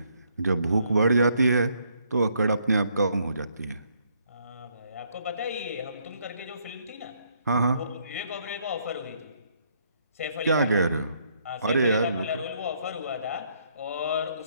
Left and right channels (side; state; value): both; inverted; correlation -0.70